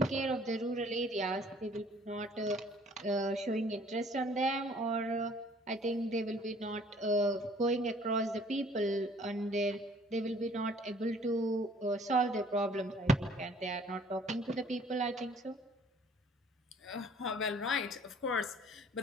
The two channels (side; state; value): both; normal; correlation 0.56